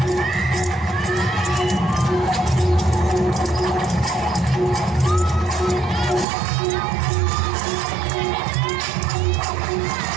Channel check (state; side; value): drops out; left; at 6.2 s